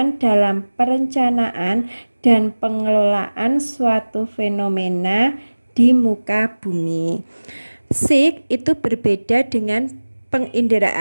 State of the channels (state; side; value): inverted; both; correlation -1.00